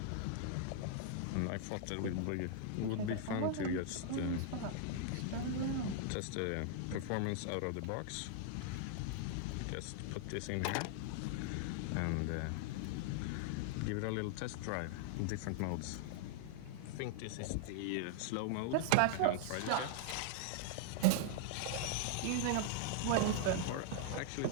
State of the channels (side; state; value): both; different; correlation -0.01